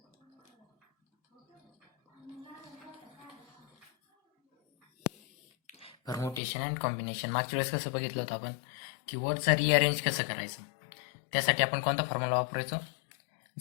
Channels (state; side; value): drops out; right; at 6.4 s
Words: Permutation and combination मागच्या वेळेस कसं बघितलं होतं आपण की वर्डचा रिअरेंज कसं करायचं. त्यासाठी आपण कोणता फॉर्म्युला वापरायचो?